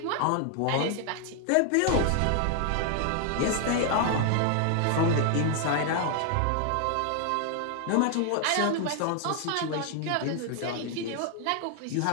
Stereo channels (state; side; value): different; both; correlation 0.00